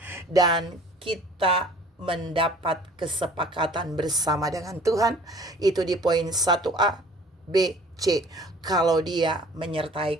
Dan kita mendapat kesepakatan bersama dengan Tuhan. Itu di poin 1A, B, C. Kalau Dia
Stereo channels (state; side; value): normal; both; correlation 0.50